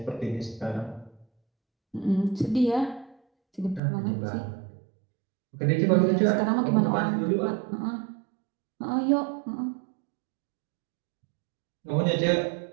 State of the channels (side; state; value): left; drops out; at 3.8 s